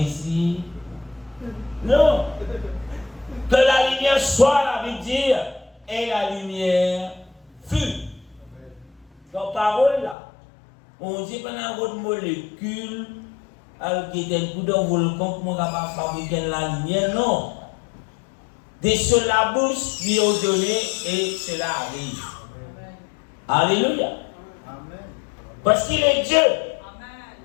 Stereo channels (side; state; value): right; drops out; at 10.2 s